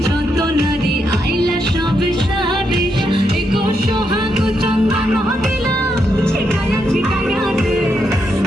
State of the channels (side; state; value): both; normal; correlation 0.81